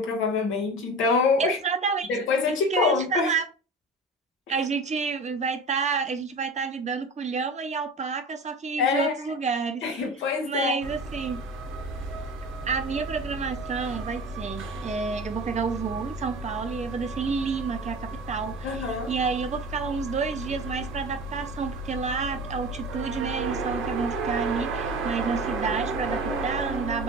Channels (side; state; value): both; normal; correlation 0.34